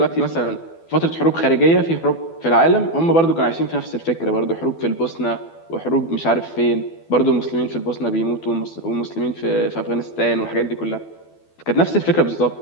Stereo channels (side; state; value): right; late; 12 ms